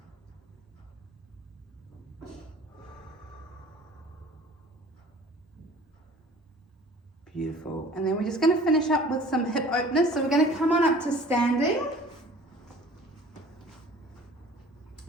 Beautiful. And then we're just going to finish up with some hip openers. So we're going to come on up to standing.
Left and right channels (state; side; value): normal; both; correlation 0.47